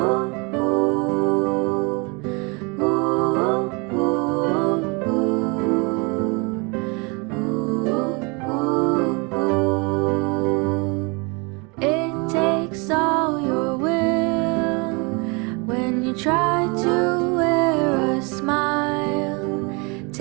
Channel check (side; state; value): left; quieter; 30.0 dB